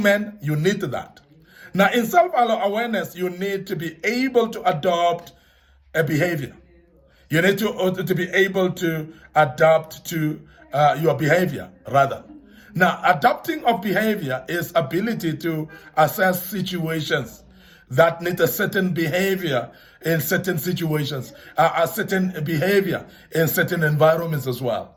man, you need that. Now, in self-awareness, you need to be able to adopt a behavior. You need to be able to adapt to your behavior, rather. Now, adapting of behavior is ability to assess situations that need a certain behavior in certain situations, a certain behavior in certain environments as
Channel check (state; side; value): identical; both; correlation 1.00